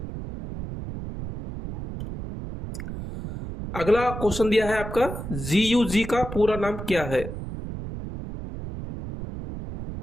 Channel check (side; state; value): right; noise; rumble, 8 dB below the sound